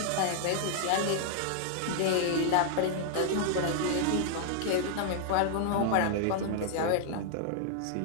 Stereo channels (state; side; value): different; both; correlation -0.01